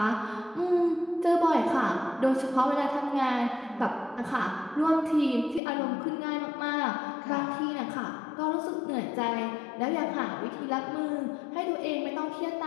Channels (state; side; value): drops out; right; at 5.6 s